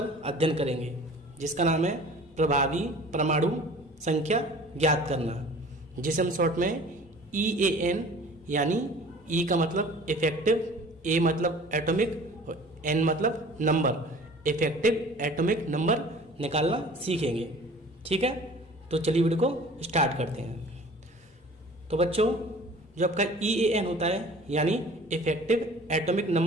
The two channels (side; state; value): both; normal; correlation 0.46